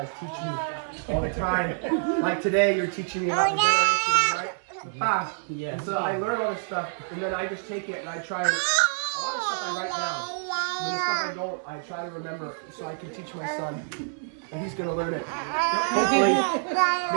teach me all the time. Like today, you're teaching me about the generations, right? Yeah. And so I learn all this stuff, and then I just take it and I try and a lot of stuff I write down. And the stuff I don't, I try to remember so I can teach my son, and he's gonna learn it. Hopefully,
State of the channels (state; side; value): silent; left; digital silence